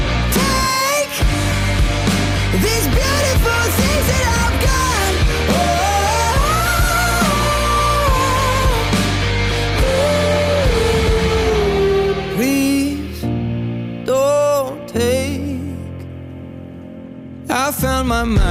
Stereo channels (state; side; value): identical; both; correlation 1.00